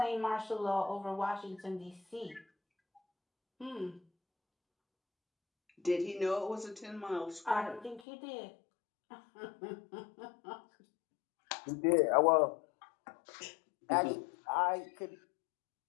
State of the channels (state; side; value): drops out; right; at 8.0 s